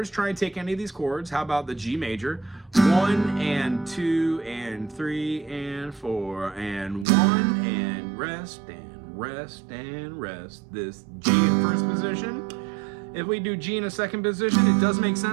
try and take any of these chords. How about the G major? 1 and 2 and 3 and 4 and 1 and rest and rest and rest. This G in first position. If we do G in a second position, it does make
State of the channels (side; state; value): left; drops out; at 7.1 s